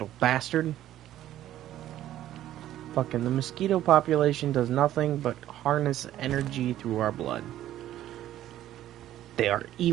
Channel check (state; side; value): quieter; left; 12.8 dB